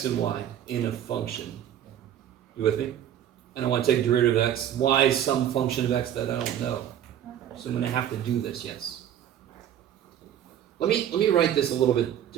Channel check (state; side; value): quieter; left; 10.4 dB